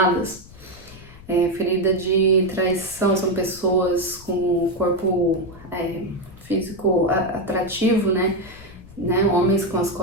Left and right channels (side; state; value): left; noise; rumble, 20 dB below the sound